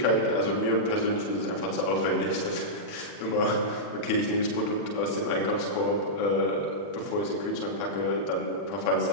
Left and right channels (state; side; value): late; right; 40 ms